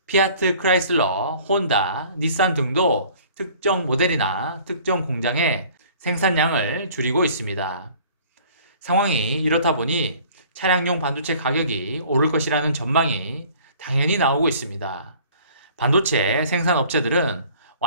피아트 크라이슬러, 혼다, 닛산 등도 특정 모델이나 특정 공장의 생산량을 줄이고 있습니다. 상황이 이렇다 보니 차량용 반도체 가격이 오를 것이라는 전망이 당연히 나오고 있습니다. 반도체 생산 업체들은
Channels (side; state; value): both; inverted; correlation -0.51